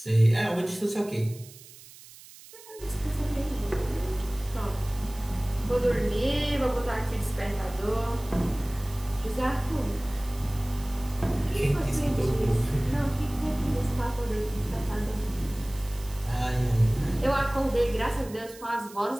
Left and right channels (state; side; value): noise; right; hiss, 20 dB below the sound